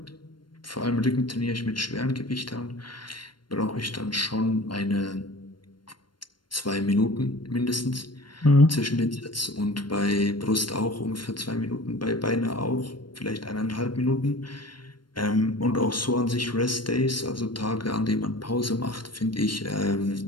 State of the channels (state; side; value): late; right; 0.72 ms